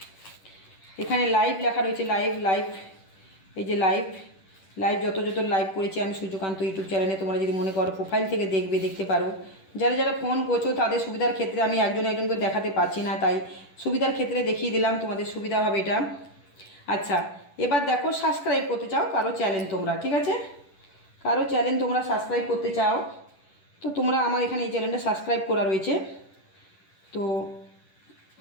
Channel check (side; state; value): right; late; 10 ms